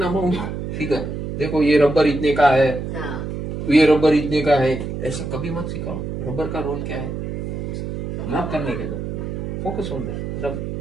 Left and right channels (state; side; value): noise; right; hum, 5 dB below the sound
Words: amount figure. देखो ये रबर इतने का है, हाँ, ये रबर इतने का है, ऐसे कभी मत सिखाओ। रबर का रोल क्या है, रब करने के लिए, फोकस ऑन दैट। रब